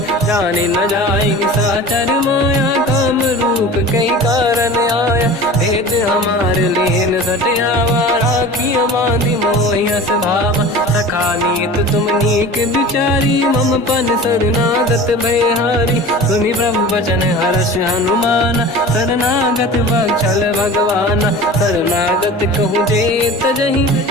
जाने न जाएगी साचर माया काम रूप कई कारण आया भेद हमार लेन सटियावा राखी मांदी मोहियस भावा सखा नीत तुम नीक बिचारी मम पन शरणागत भयहारी सुनि प्रभु वचन हर्ष हनुमान शरणागत वत्सल भगवान शरणागत कहूँ जे तजहि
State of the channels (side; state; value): both; normal; correlation 0.38